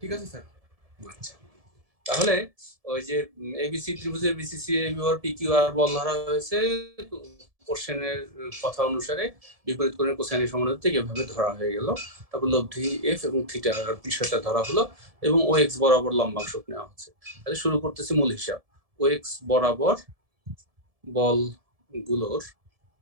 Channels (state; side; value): late; left; 1.7 ms